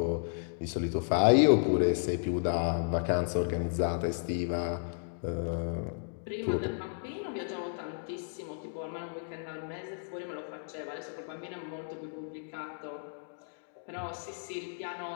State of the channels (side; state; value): right; silent; digital silence